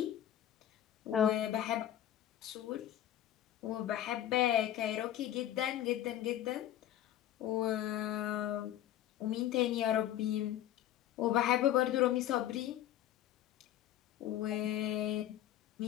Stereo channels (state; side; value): quieter; right; 12.3 dB